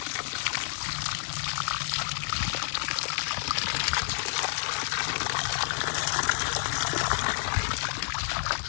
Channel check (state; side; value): silent; right; digital silence